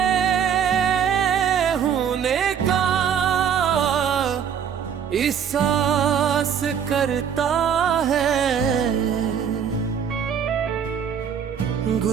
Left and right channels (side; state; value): left; quieter; 7.9 dB